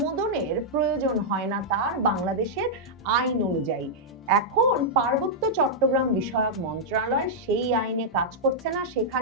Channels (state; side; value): normal; both; correlation -0.07